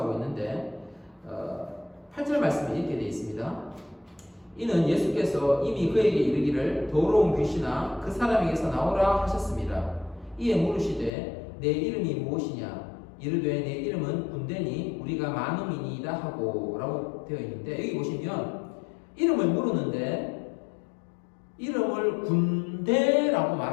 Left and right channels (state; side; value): drops out; right; at 11.1 s